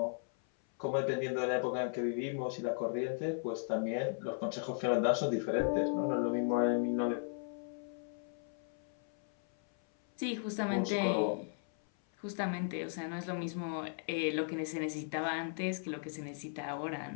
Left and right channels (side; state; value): right; silent; 54 dB below the other